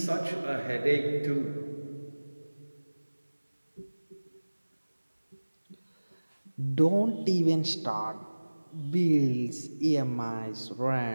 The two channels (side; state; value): both; inverted; correlation -1.00